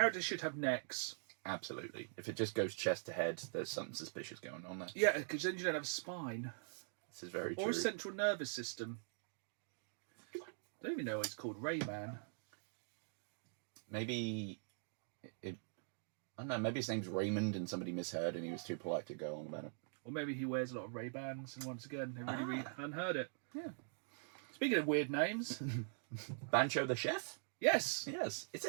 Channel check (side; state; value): left; silent; digital silence